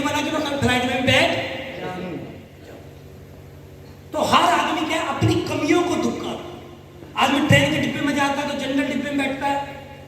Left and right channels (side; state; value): both; identical; correlation 1.00